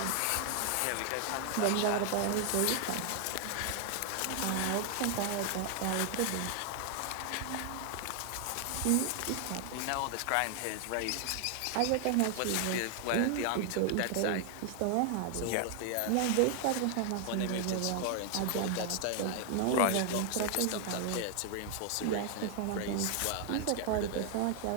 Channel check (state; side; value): different; both; correlation 0.00